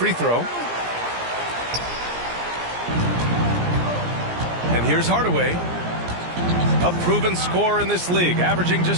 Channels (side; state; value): left; late; 17 ms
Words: throw. And here's Hardaway, a proven scorer in this league, averaging